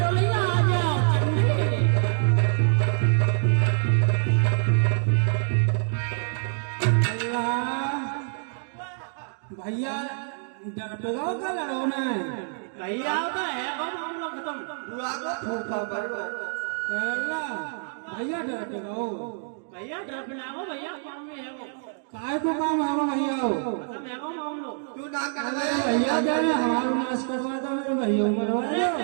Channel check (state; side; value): silent; left; digital silence